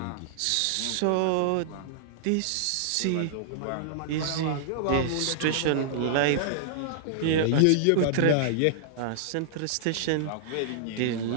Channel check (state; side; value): different; both; correlation -0.01